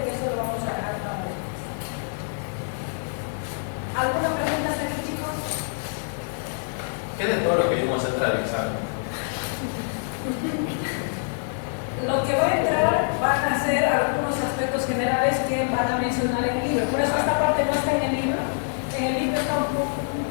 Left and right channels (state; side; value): silent; right; 61 dB below the other